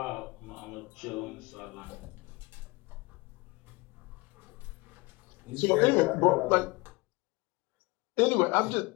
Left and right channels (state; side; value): quieter; right; 24.5 dB